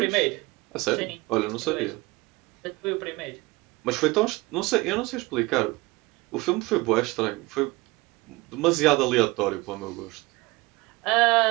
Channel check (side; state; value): left; quieter; 22.5 dB